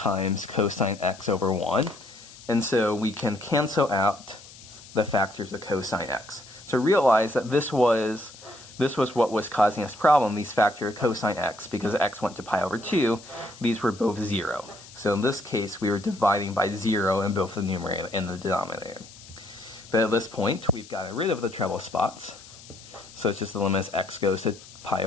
cosine x over 1. And so we can cancel out the factors of cosine x. So realize that this was what was causing us problem, these factors of cosine x, because x went to pi over 2, these were both 0. So in this case, we were dividing by 0 in both the numerator and the denominator. But at this point, we've gotten rid of the treble spots. So it's just the limit as x goes to pi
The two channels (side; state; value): left; noise; hiss, 19 dB below the sound